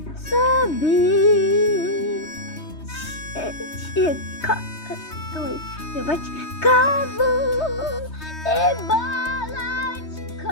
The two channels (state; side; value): late; right; 3.2 ms